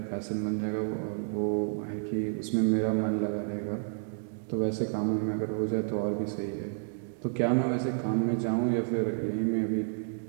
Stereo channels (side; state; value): left; silent; digital silence